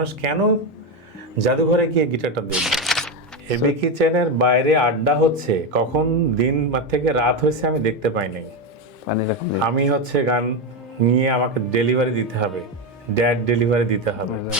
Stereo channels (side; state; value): both; normal; correlation 0.11